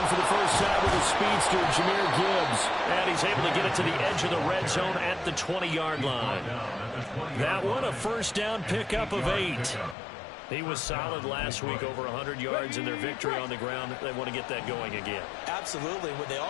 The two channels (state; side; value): drops out; right; at 10.0 s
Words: for the first time with the speedster, Jahmyr Gibbs. And he's able to get it to the edge of the red zone at the 20-yard line. That one, a first down pickup of 8. He was solid last week, over 100 yards in their victory on the ground. They want to get that going again. Absolutely. What they